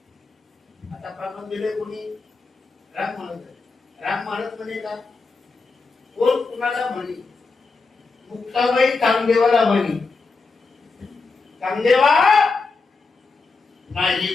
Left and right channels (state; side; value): quieter; right; 4.1 dB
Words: आता प्रमाण दिले कोणी राम महाराज म्हणे का कोण कुणाला म्हणी. मुक्ताबाई चांगदेवाला म्हणी चांगदेवा नाही